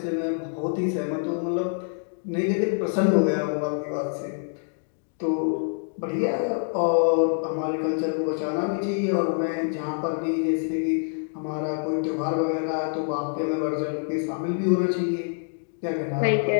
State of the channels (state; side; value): silent; right; digital silence